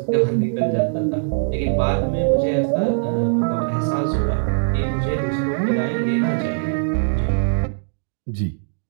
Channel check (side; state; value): left; silent; digital silence